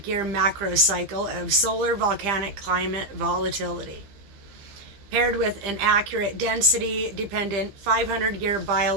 macro cycle of solar volcanic climate volatility, paired with an accurate density-dependent 500-year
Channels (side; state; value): left; late; 15 ms